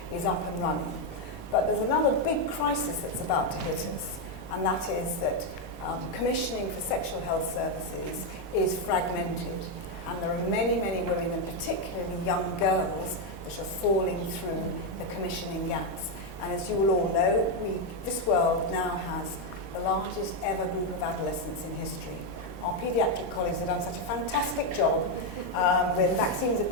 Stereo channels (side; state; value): both; normal; correlation 0.04